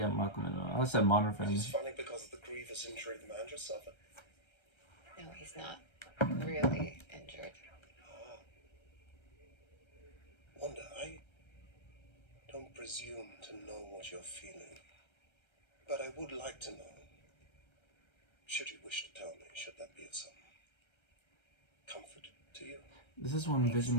Malcolm in the Middle. I said Modern Family. It's funny because of the grievous injury the man just suffered. No, he's not really injured. Wanda, I don't presume to know what you're feeling, but I would like to know. Should you wish to tell me, should that be of some comfort to you? This is when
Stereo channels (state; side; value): late; right; 1.3 ms